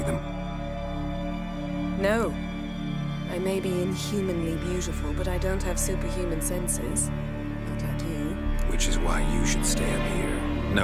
them? No. I may be inhumanly beautiful, but I don't have superhuman senses. Not like you. Which is why you should stay up here.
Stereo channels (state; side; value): identical; both; correlation 1.00